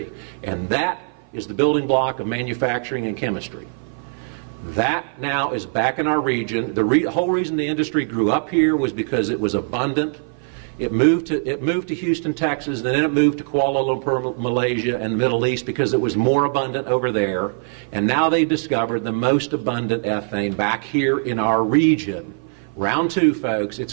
And that is the building block of manufacturing and chemistry. That now is back in our region. The whole reason the industry grew up here was because it was abundant. It moved to Houston, Texas, then it moved to Kuala Lumpur, Malaysia, and the Middle East because it was more abundant over there. And now they discovered the most abundant ethane back here in our region. Round 2, folks, it's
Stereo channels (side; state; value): left; silent; 55 dB below the other